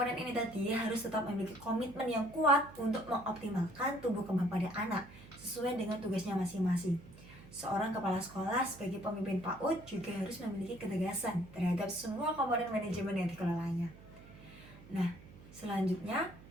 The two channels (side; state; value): right; noise; hum, 19 dB below the sound